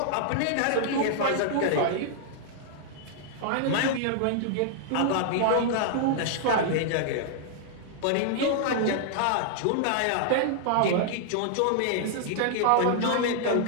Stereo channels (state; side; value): different; both; correlation -0.01